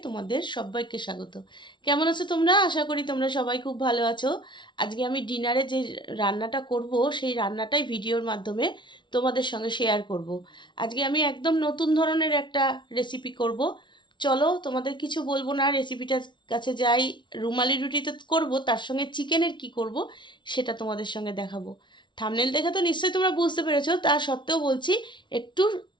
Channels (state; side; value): late; right; 0.23 ms